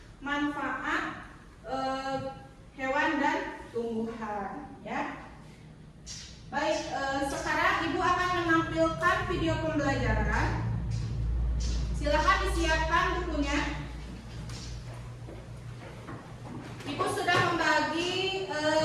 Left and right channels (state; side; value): identical; both; correlation 1.00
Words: manfaat hewan dan tumbuhan. Ya, baik. Sekarang Ibu akan menampilkan video pembelajaran. Silakan disiapkan bukunya. Ibu sudah membagi